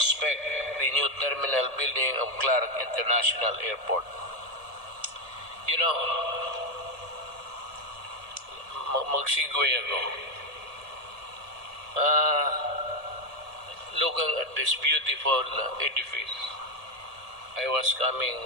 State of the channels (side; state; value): left; late; 1.7 ms